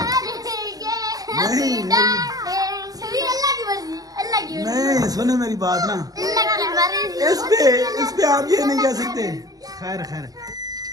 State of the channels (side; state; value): left; late; 0.18 ms